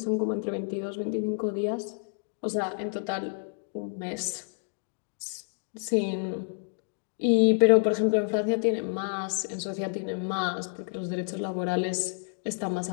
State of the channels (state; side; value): silent; right; digital silence